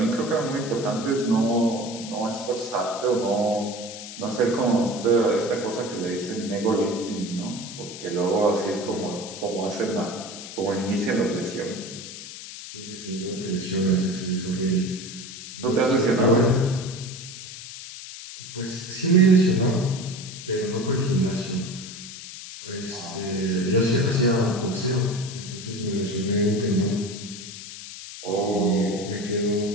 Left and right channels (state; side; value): noise; left; hiss, 12 dB below the sound